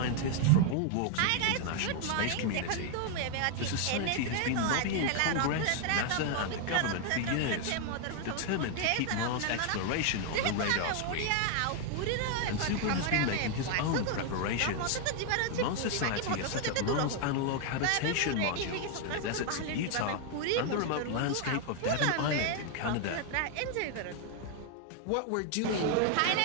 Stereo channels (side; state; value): both; different; correlation 0.00